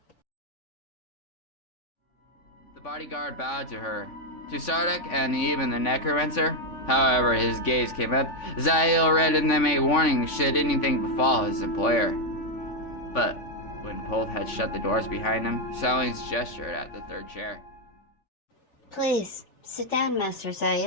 The bodyguard bowed to her. To Sardak and even the necromancer, however, his gaze came up. Zayl read in them a warning should anything befall his employer. But when Pulth had shut the doors behind him, Selene's gestured at the third chair. Please, sit down, Master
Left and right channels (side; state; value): right; late; 3.5 ms